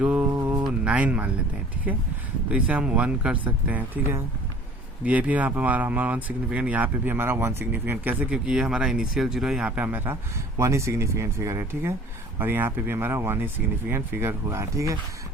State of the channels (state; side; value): normal; both; correlation 0.49